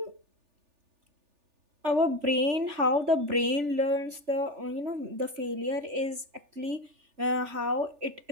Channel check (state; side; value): late; left; 3.4 ms